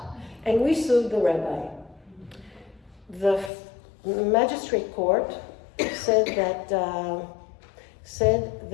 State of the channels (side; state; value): right; drops out; at 3.5 s